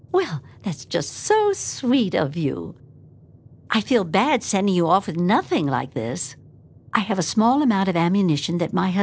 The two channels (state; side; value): identical; both; correlation 1.00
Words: Well, that's just so sweet of you. I feel bad sending you off with nothing like this. I have a small amount of ammunition that my